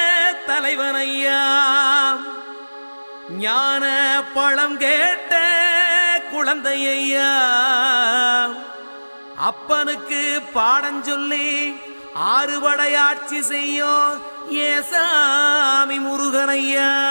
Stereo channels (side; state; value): both; inverted; correlation -1.00